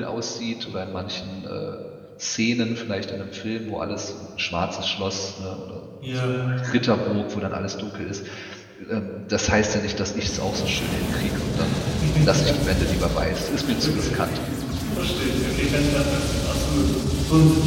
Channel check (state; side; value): identical; both; correlation 1.00